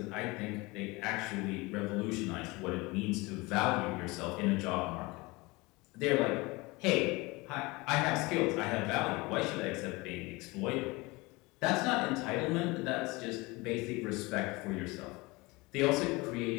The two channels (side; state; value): right; quieter; 23.8 dB